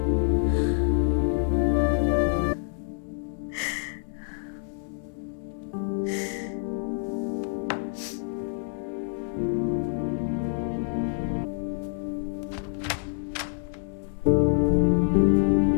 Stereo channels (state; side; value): silent; right; digital silence